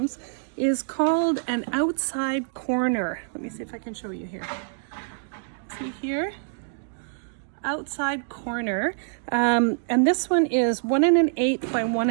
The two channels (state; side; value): silent; left; digital silence